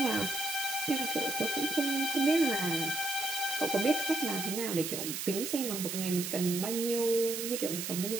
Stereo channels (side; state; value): right; noise; hiss, 4 dB below the sound